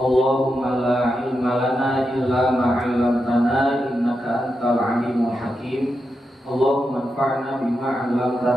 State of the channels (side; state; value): both; normal; correlation 0.87